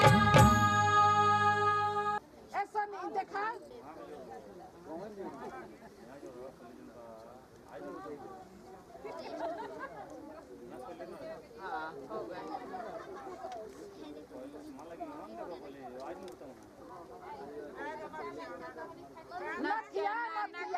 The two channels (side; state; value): both; identical; correlation 1.00